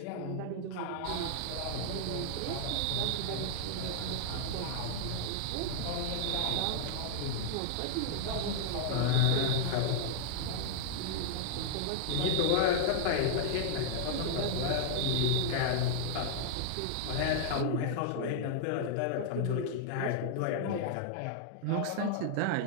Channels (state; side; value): different; both; correlation -0.01